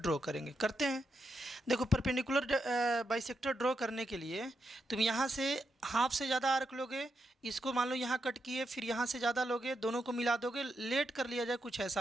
करेंगे, करते हैं। देखो परपेंडिकुलर बाइसेक्टर ड्रॉ करने के लिए तुम यहाँ से हाफ से ज़्यादा आर्क लोगे, इसको मान लो यहाँ कट किए, फिर यहाँ से ज़्यादा लोगे, दोनों को मिला दोगे, लेट कर लिया जाए, कुछ ऐसा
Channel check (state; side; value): normal; both; correlation 0.83